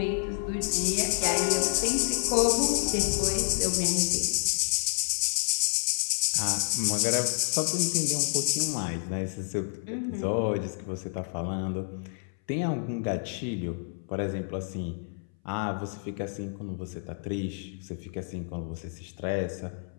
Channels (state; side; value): silent; right; 59 dB below the other